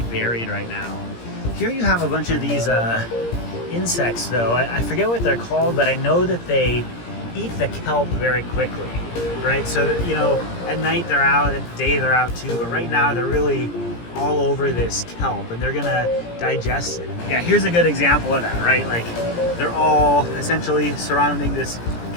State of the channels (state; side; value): late; right; 17 ms